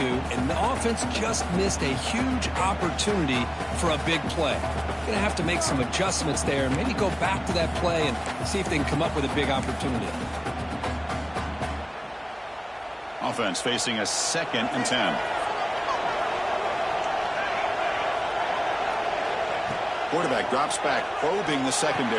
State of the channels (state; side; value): identical; both; correlation 1.00